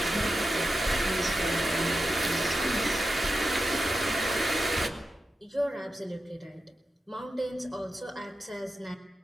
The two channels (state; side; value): normal; both; correlation 0.91